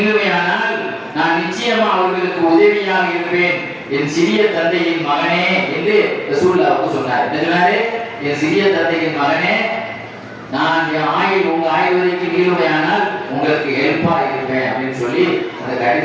நான் நிச்சயமா அவர்களுக்கு உதவியாக இருப்பேன், என் சிறிய தந்தையின் மகனே என்று ரசூலுல்லாஹ் சொன்னார். என்ன சொன்னாரு? என் சிறிய தந்தையின் மகனே, நான் என் ஆயுள் உங்க ஆயுள் வரைக்கும் நிலுவையானால் உங்களுக்கு ஹெல்ப்பா இருப்பேன் அப்படின்னு சொல்லி அந்த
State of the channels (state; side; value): identical; both; correlation 1.00